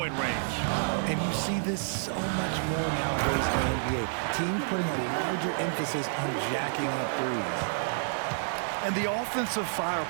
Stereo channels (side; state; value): left; silent; digital silence